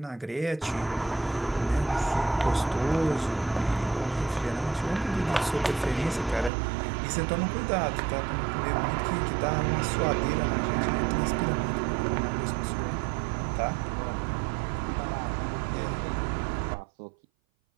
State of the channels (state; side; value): drops out; left; at 6.5 s